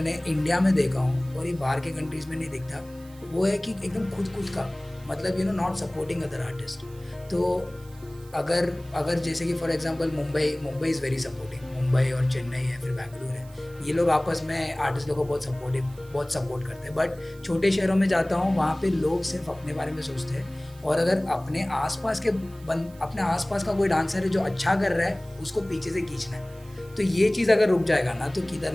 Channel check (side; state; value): right; noise; hiss, 25 dB below the sound